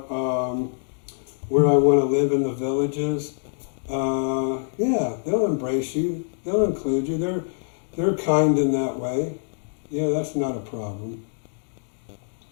where I want to live in the Villages. Yeah, they'll embrace you. They'll include you. They're kind in that way. Yeah, that's not a problem.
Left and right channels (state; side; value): silent; right; digital silence